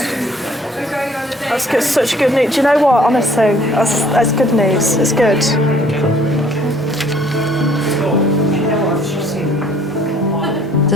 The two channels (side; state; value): both; normal; correlation 0.59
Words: That's good, such good news. Do you know what, honestly, that's good news. It's good.